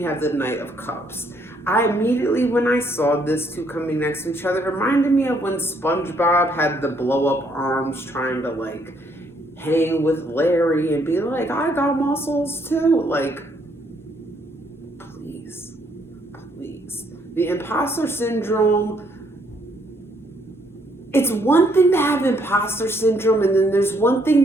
have the Knight of Cups. I immediately, when I saw this two coming next to each other, it reminded me of when SpongeBob had the blow up arms trying to like hang with Larry and be like, I got muscles too. Like, please. The imposter syndrome, it's one thing to have imposter syndrome, and then there's one thing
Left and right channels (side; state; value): both; normal; correlation 0.69